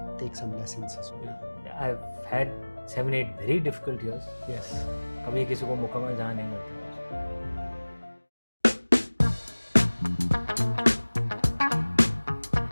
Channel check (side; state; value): both; inverted; correlation -1.00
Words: take some lessons as well? I've had 7-8 very difficult years. Yes. कभी किसी को मुकम्मल जहाँ नहीं मिलता.